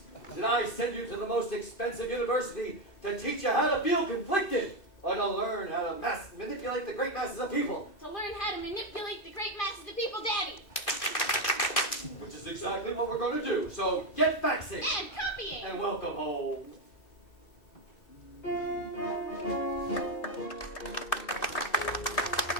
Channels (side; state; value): right; late; 2.6 ms